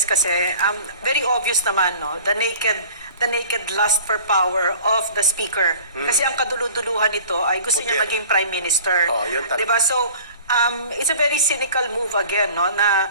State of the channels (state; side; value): inverted; both; correlation -0.45